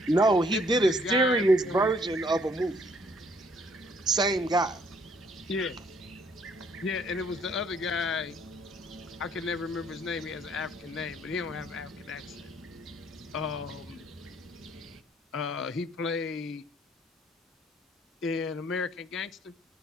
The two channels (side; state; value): both; normal; correlation 0.64